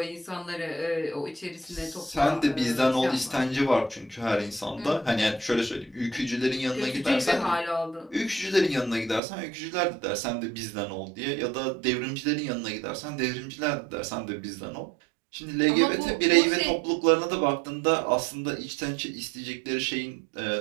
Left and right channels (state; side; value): drops out; left; at 9.2 s